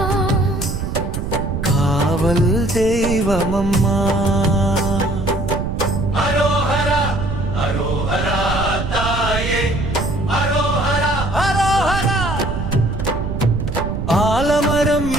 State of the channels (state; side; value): noise; right; rumble, 4 dB below the sound